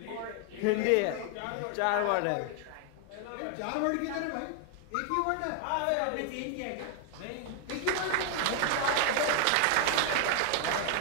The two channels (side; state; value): both; different; correlation 0.00